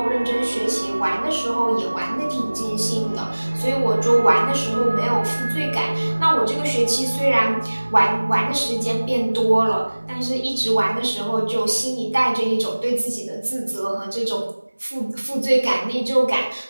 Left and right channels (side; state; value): both; inverted; correlation -1.00